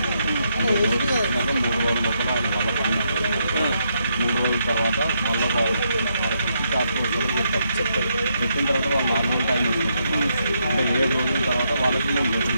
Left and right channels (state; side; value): inverted; both; correlation -0.78